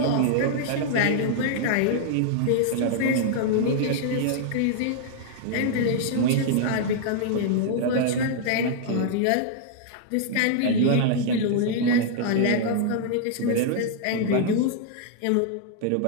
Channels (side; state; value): both; different; correlation -0.01